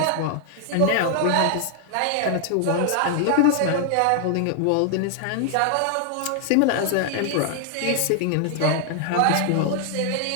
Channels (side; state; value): both; different; correlation 0.00